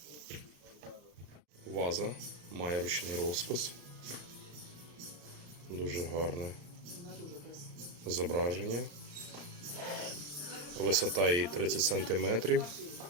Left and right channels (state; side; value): late; left; 34 ms